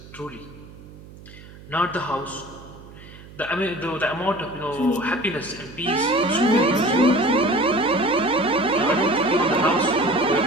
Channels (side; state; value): right; noise; hum, 19 dB below the sound